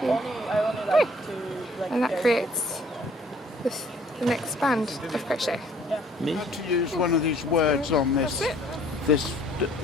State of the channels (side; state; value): both; normal; correlation 0.58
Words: And that creates the next band of crochet. Me to use one of these words on this